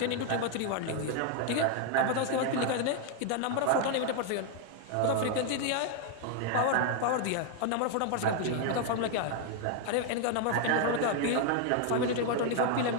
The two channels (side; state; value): both; different; correlation 0.00